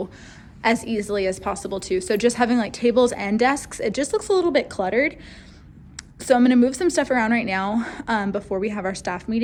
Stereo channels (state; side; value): identical; both; correlation 1.00